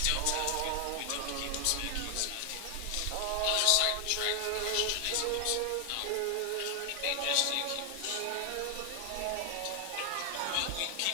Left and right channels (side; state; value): both; different; correlation 0.00